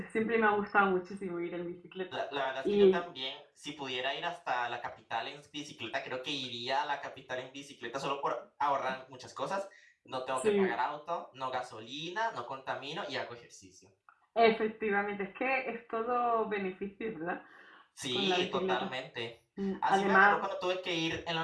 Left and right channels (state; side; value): identical; both; correlation 1.00